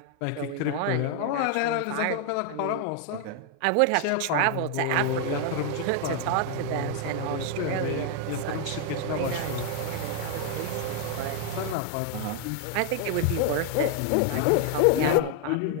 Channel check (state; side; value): different; both; correlation 0.00